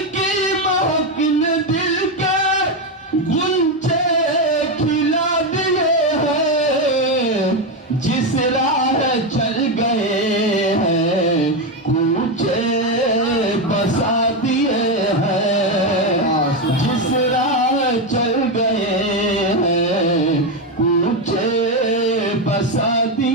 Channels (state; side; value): normal; both; correlation 0.09